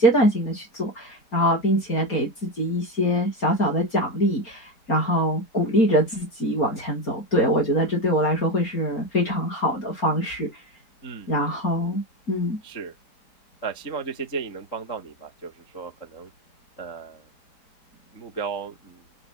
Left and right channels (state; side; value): late; right; 4.3 ms